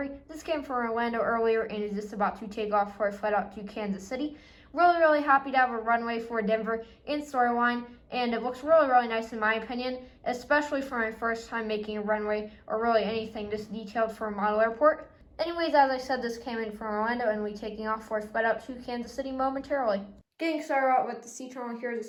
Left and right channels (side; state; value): both; identical; correlation 1.00